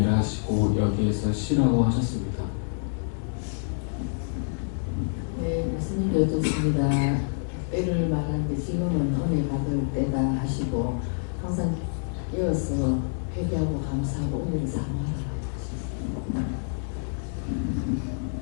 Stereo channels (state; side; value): silent; right; digital silence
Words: 하시고 여기에서 쉬라고 하셨습니다. 네, 예수님이 여쭙습니다. 때를 말하는데 지금은 은혜 받을 때다 하시고, 항상 이어서 회개하고 감사하고 은혜를 사모하라 하셨습니다.